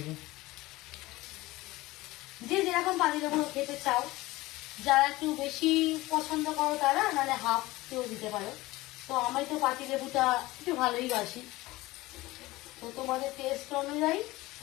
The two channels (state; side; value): quieter; right; 19.3 dB